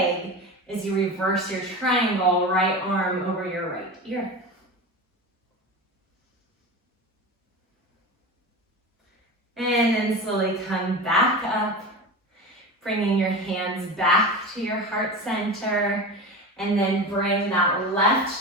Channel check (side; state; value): both; normal; correlation 0.28